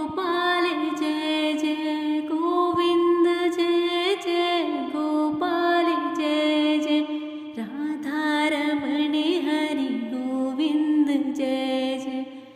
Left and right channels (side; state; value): both; identical; correlation 1.00